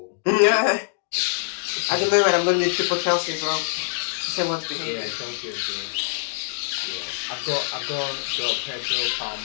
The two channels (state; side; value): silent; right; digital silence